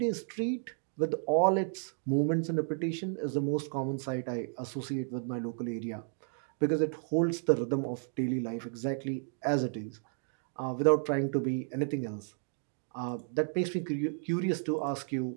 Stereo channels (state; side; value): silent; left; 56 dB below the other